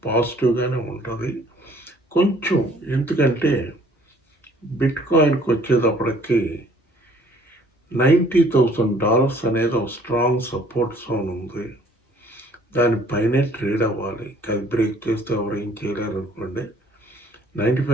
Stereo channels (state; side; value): normal; both; correlation 0.58